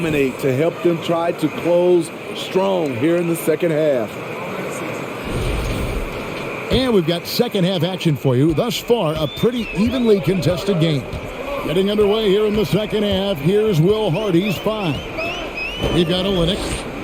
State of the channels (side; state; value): both; identical; correlation 1.00